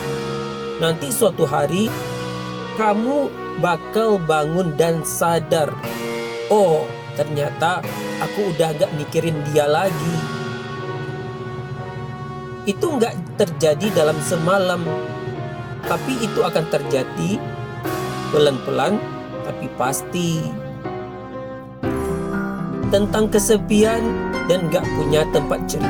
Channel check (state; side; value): identical; both; correlation 1.00